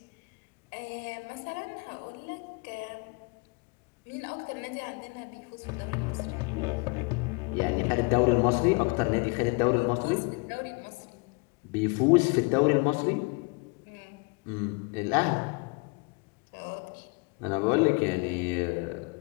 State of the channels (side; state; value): right; quieter; 30.7 dB